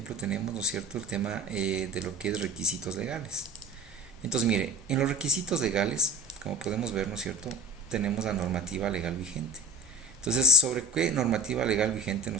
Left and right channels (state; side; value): normal; both; correlation 0.32